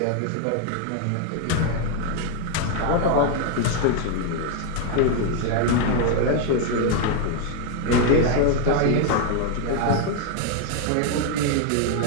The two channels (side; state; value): both; different; correlation 0.01